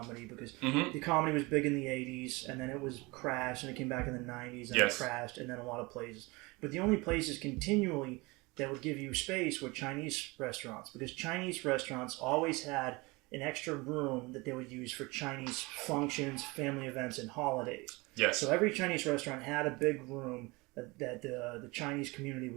because the comedy was big in the 80s and then it was crashed and it came back in the 90s and it crashed and then a lot of places. But the only places continually that would give you space were Chinese restaurants because Chinese restaurants always had an extra room that they would use for Chinese functions, family events, and holidays. Yes. So every Chinese restaurant had a big room that the Chinese community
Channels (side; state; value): left; quieter; 24.5 dB